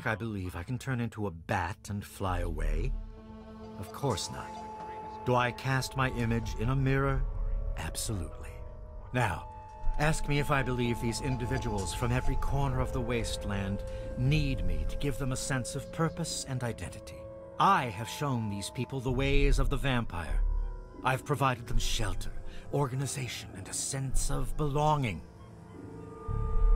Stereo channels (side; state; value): both; identical; correlation 1.00